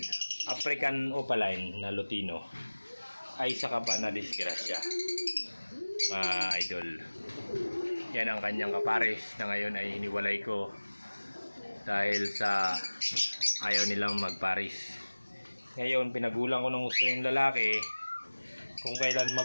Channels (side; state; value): both; inverted; correlation -1.00